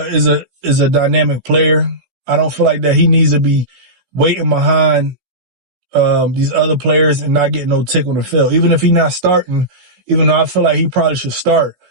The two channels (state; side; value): late; left; 16 ms